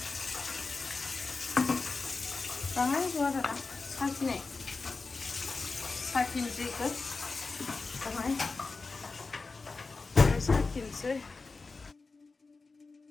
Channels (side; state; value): right; quieter; 4.0 dB